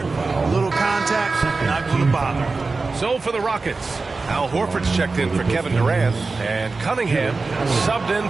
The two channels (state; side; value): quieter; left; 3.9 dB